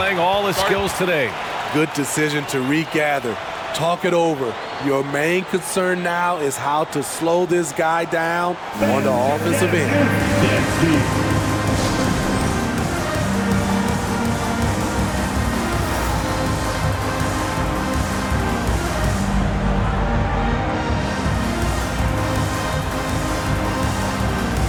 all his skills today. Good decision to regather. Talk it over. Your main concern now is how to slow this guy down on the offensive end.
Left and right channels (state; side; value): identical; both; correlation 1.00